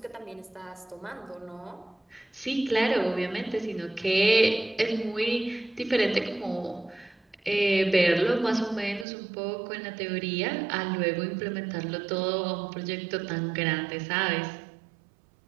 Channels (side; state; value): left; drops out; at 9.1 s